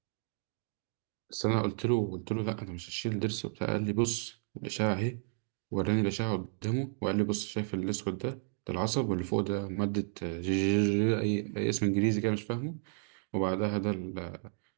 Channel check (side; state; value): left; silent; 56 dB below the other